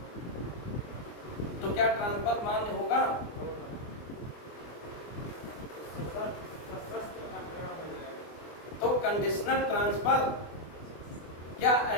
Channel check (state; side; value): late; right; 24 ms